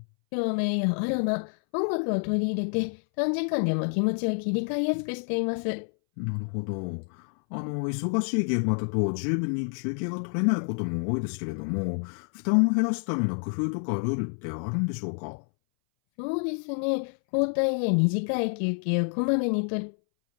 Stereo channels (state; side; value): silent; right; 60 dB below the other